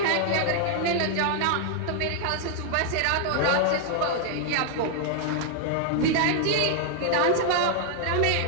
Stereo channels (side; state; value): both; different; correlation 0.00